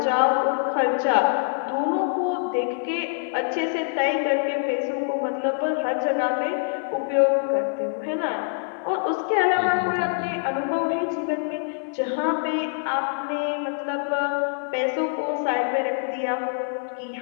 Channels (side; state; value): right; silent; digital silence